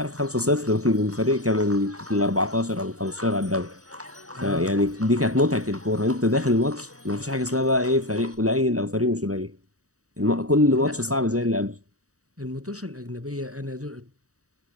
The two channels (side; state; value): left; late; 0.66 ms